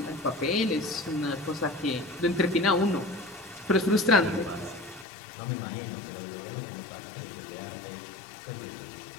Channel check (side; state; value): right; drops out; at 5.1 s